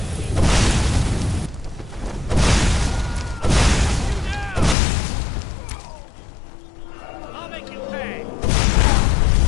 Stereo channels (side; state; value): right; drops out; at 4.8 s